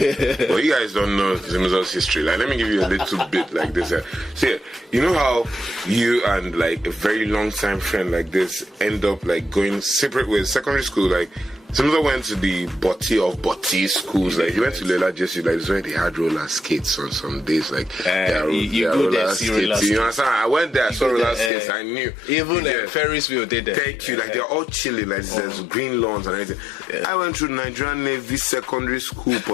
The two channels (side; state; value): right; drops out; at 21.5 s